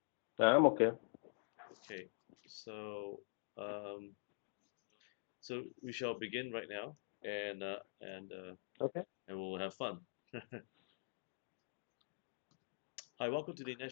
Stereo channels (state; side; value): silent; right; digital silence